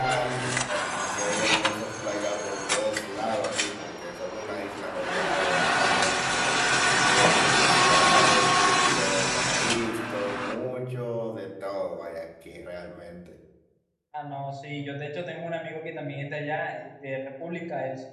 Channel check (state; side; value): identical; both; correlation 1.00